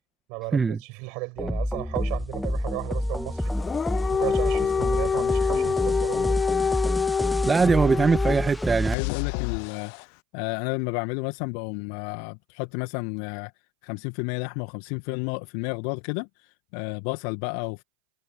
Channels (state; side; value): drops out; right; at 9.0 s